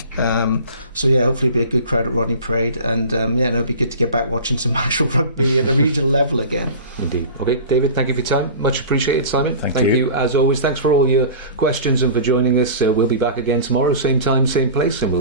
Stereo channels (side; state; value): both; inverted; correlation -0.38